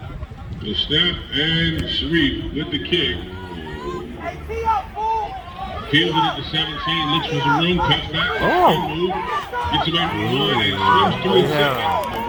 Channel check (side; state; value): both; identical; correlation 1.00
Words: The snap and Sharif with the kick. Fielded at the 17, looks for some room, cuts back, move, gets away from one and swims through his second, but